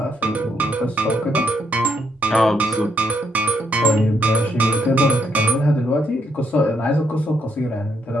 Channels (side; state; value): both; normal; correlation 0.74